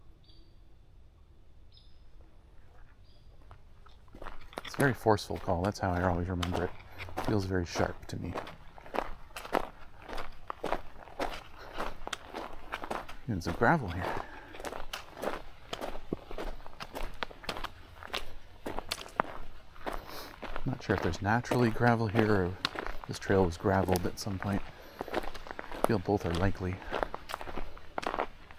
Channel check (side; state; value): both; identical; correlation 1.00